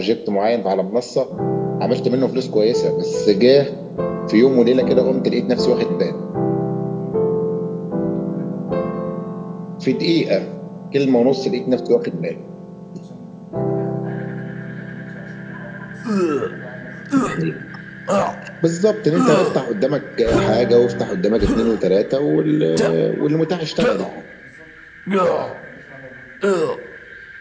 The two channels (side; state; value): both; identical; correlation 1.00